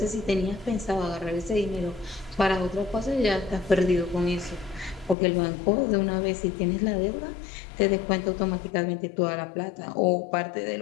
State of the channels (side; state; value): right; drops out; at 5.2 s